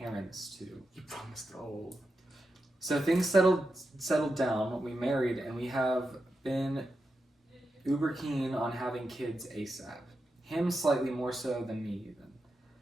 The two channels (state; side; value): normal; both; correlation 0.88